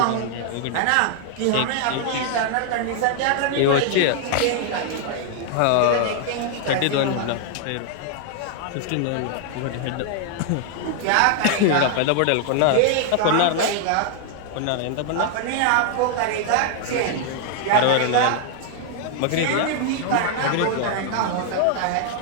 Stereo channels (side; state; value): both; different; correlation 0.00